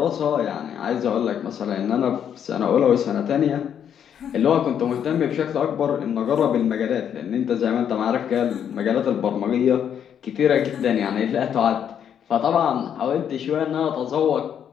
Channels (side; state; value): right; quieter; 8.8 dB